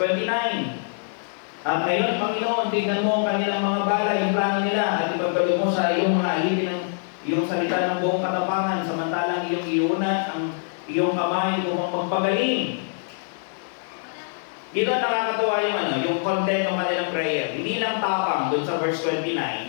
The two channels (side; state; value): right; silent; digital silence